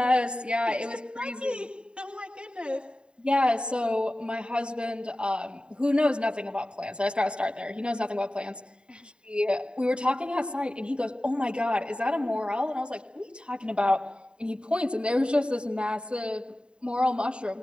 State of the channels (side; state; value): left; late; 0.051 ms